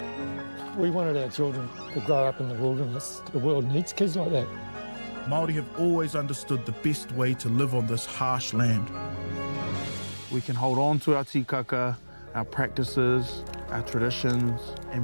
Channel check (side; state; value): both; inverted; correlation -1.00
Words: We wanted our children to grow up in the wilderness. The world needs kids like that. Māori have always understood the best way to live on this harsh land. We can hold on to our tikaka, our practices, our traditions,